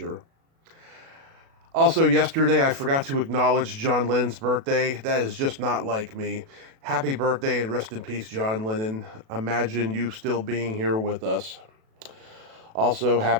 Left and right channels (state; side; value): late; left; 37 ms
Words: Also, yesterday I forgot to acknowledge John Lennon's birthday. That is just not like me. Happy birthday and rest in peace, John Lennon. Imagine you still being here with us. Also,